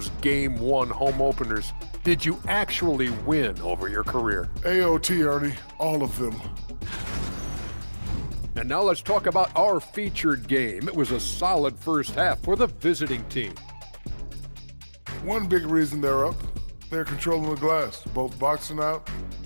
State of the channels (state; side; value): inverted; both; correlation -1.00